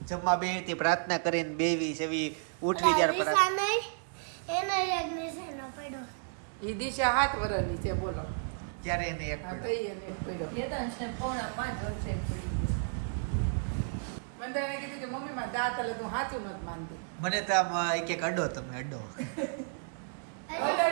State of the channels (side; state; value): left; silent; digital silence